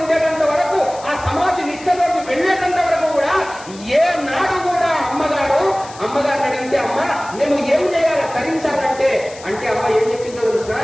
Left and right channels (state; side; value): noise; left; hiss, 19 dB below the sound